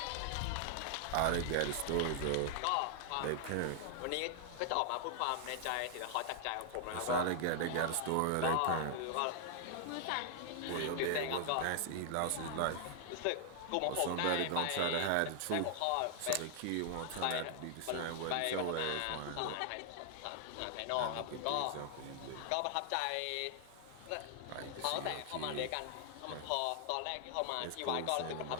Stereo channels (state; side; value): different; both; correlation -0.01